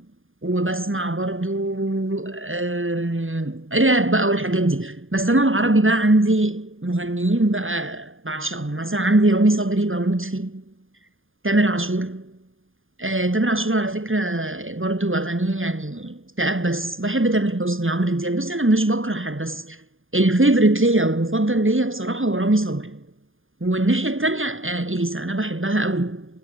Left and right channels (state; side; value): late; left; 0.59 ms